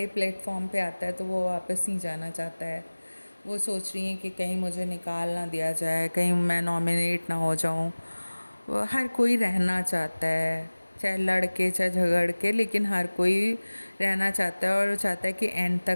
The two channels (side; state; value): both; inverted; correlation -1.00